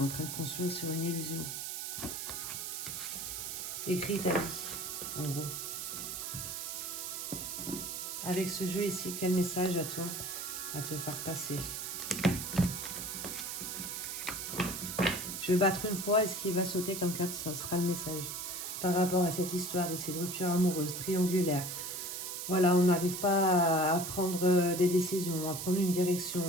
train de construire sur une illusion. Écris ta vie, en gros. Avec ce jeu ici, quel message à toi à te faire passer? Je vais battre une fois et ce qui va sauter comme carte, ça sera le message. Par rapport à cette histoire ici, de rupture amoureuse, triangulaire. Voilà, on n'arrive pas à prendre des décisions, à prendre une direction.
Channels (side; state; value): right; noise; hiss, 5 dB below the sound